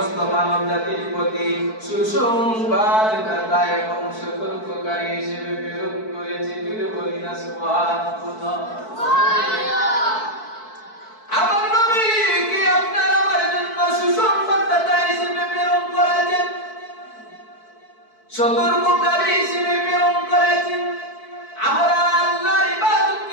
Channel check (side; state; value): right; late; 4.6 ms